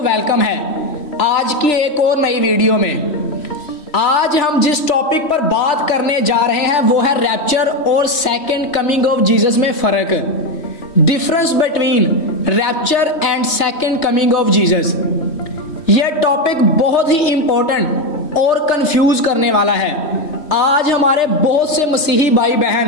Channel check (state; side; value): late; right; 3.1 ms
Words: वेलकम है आज की एक और नई वीडियो में। आज हम जिस टॉपिक पर बात करने जा रहे हैं वो है रैप्चर और सेकंड कमिंग ऑफ जीसस में फर्क, difference between rapture and second coming of Jesus. यह टॉपिक बहुत ही इंपॉर्टेंट और कंफ्यूज करने वाला है। आज हमारे बहुत से मसीही भाई